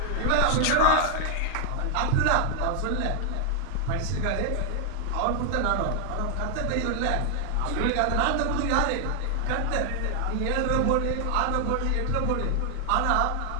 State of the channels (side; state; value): both; different; correlation 0.00